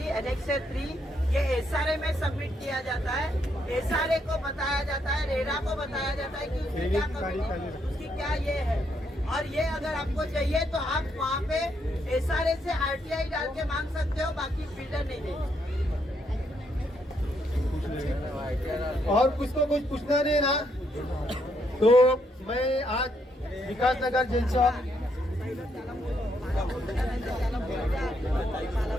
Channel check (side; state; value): both; normal; correlation 0.75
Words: एनेक्सर 3 ये एसआरए में सबमिट किया जाता है। एसआरए को बताया जाता है, रेरा को बताया जाता है कि उसकी क्या कमी, उसकी क्या ये है। और ये अगर आपको चाहिए तो आप वहाँ पे एसआरए से आरटीआई डाल के मांग सकते हो, बाकी बिल्डर नहीं देंगे। और कुछ तो कुछ पूछना नहीं ना, तो मैं आज विकास नगर जेल चौक